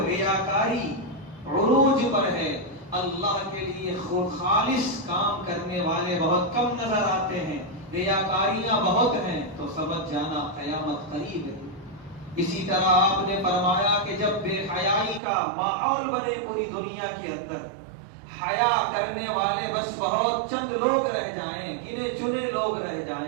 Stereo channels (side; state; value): left; drops out; at 15.2 s